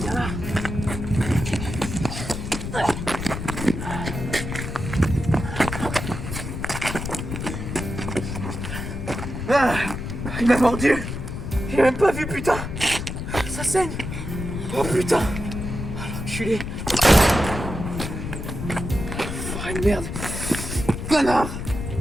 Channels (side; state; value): left; noise; rumble, 6 dB below the sound